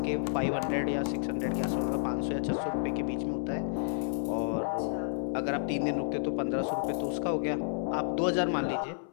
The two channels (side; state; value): right; silent; 57 dB below the other